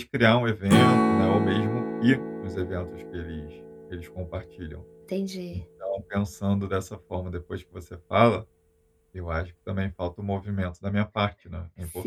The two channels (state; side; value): identical; both; correlation 1.00